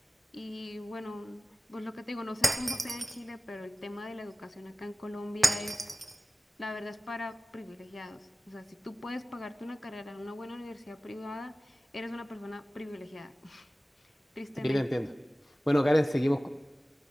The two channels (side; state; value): both; normal; correlation 0.97